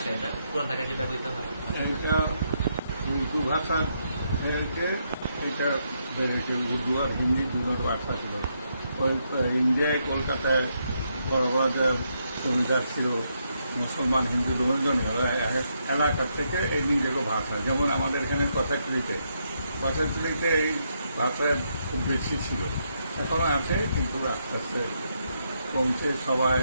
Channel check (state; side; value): inverted; both; correlation -0.79